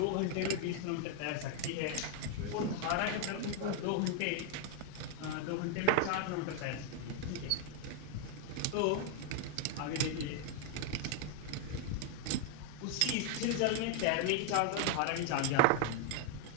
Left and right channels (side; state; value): both; different; correlation 0.00